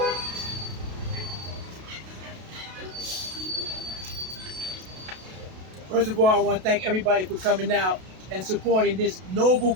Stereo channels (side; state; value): left; late; 32 ms